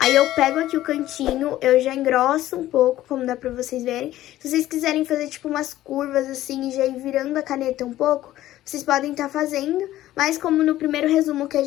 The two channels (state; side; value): quieter; right; 14.4 dB